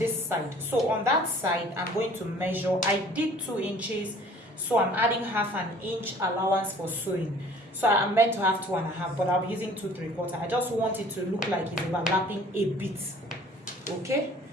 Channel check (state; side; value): normal; both; correlation 0.51